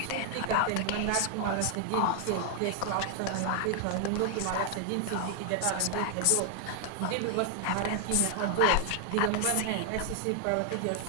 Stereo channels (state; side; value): different; both; correlation 0.00